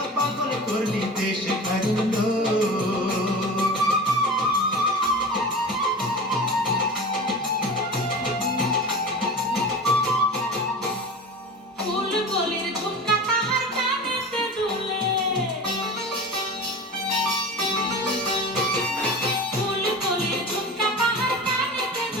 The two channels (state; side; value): normal; both; correlation 0.33